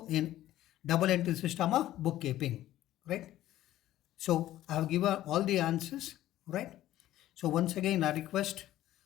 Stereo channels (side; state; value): right; quieter; 13.9 dB